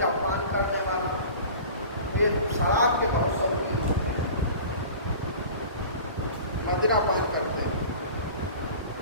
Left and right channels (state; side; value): inverted; both; correlation -0.40